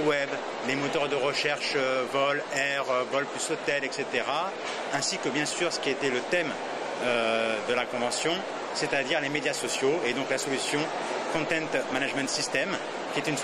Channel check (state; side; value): identical; both; correlation 1.00